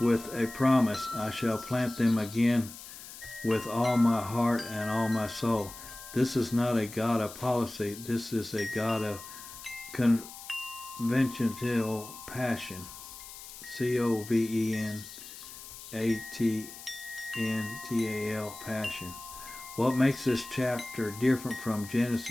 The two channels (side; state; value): left; noise; hiss, 14 dB below the sound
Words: with a promise: I shall plant them again with all my heart and all my soul. This is not a God of policy. This is a God of conventional passion. Covenantal passion. What makes this chapter different from